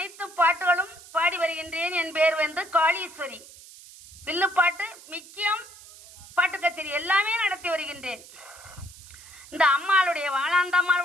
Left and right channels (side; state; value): right; noise; hiss, 19 dB below the sound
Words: பாட்டுகளும் பாடி வருகின்றேன். என் பேர் காளீஸ்வரி. வில்லுப்பாட்டு மிக்கியம் பாட்டு கச்சேரி எல்லாமே நடத்தி வருகின்றேன். இந்த அம்மாளுடைய